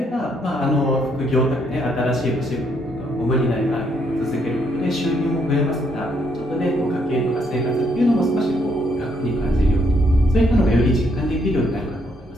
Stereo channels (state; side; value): normal; both; correlation 0.72